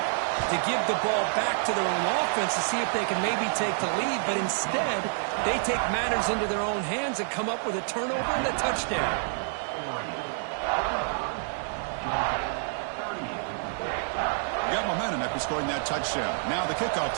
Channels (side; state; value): left; silent; digital silence